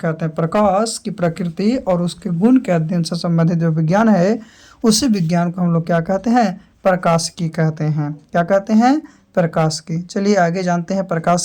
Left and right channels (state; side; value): identical; both; correlation 1.00